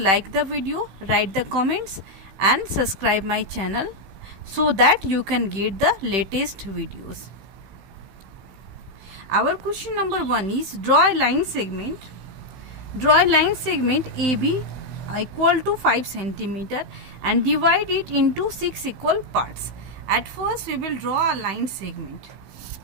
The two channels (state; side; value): late; left; 16 ms